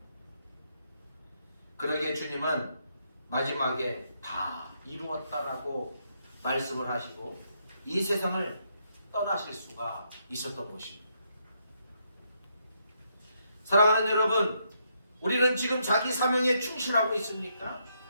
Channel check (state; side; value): inverted; both; correlation -0.77